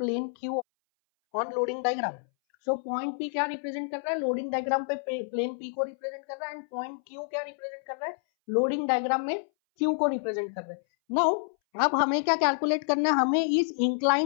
Q on loading diagram. So point P क्या represent कर रहा है, loading diagram पे plane P को represent कर रहा है, and point Q क्या represent कर रहा है, loading diagram में Q को represent कर रहा है। Now अब हमें क्या कैलकुलेट करना है, हमें इस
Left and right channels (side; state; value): right; silent; 59 dB below the other